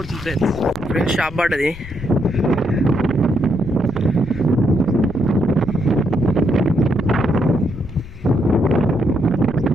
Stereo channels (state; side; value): noise; left; rumble, 15 dB below the sound